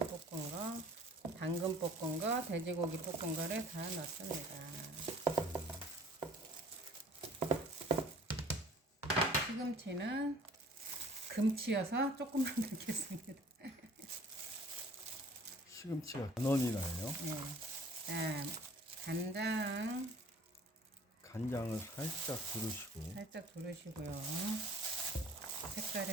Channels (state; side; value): normal; both; correlation 0.52